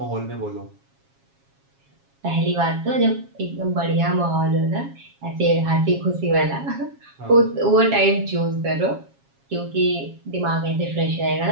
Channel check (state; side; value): late; left; 7.3 ms